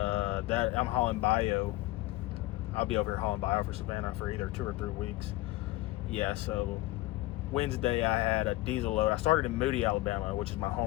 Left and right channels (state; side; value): quieter; right; 18.3 dB